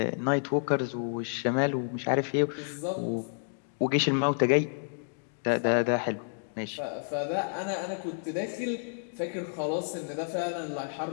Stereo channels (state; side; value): silent; right; digital silence